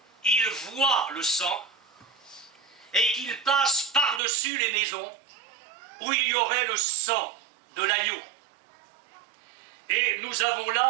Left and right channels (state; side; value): drops out; left; at 4.2 s